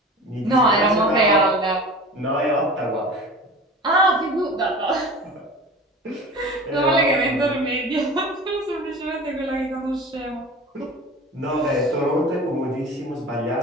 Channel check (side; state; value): both; normal; correlation 0.37